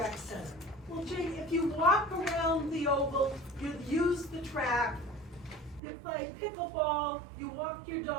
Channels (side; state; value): left; drops out; at 5.8 s